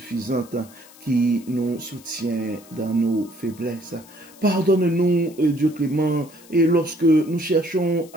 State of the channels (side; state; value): left; noise; hiss, 23 dB below the sound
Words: qui nous soutient dans nos faiblesses. Pardonne-nous, Dieu clément, et lorsque nous cherchons